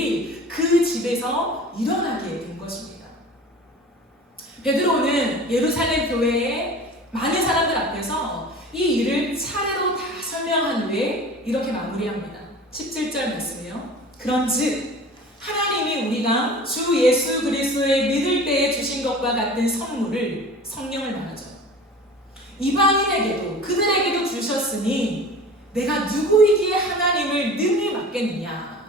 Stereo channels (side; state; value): both; normal; correlation 0.40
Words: 그 집에서 일어나게 된 것입니다. 베드로는 예루살렘 교회의 많은 사람들 앞에서 이 일을 차례로 다 설명한 후에 이렇게 마무리합니다. 17절 말씀이요. 그런즉 하나님이 우리가 주 예수 그리스도의 믿을 때에 주신 것과 같은 선물을, 성령을 말하죠, 이방인에게도 그들에게도 주셨으니 내가 누구이기에 하나님을 능히